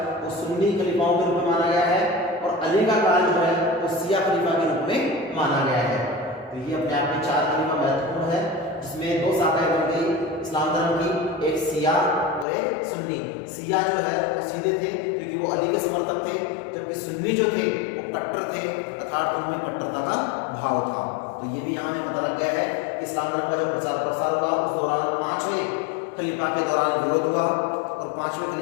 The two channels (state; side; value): drops out; right; at 12.5 s